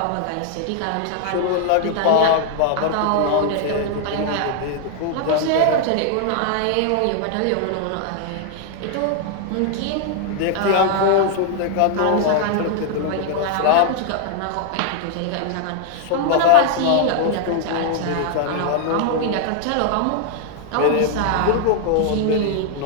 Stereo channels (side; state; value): both; different; correlation 0.00